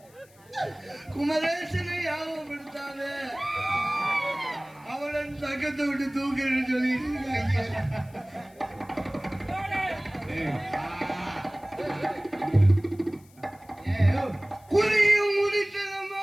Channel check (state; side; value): noise; left; hiss, 29 dB below the sound